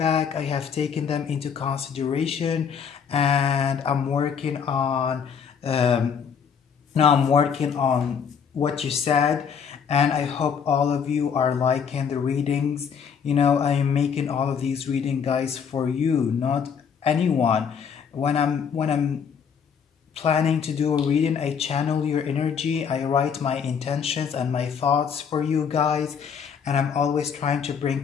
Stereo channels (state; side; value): quieter; right; 6.9 dB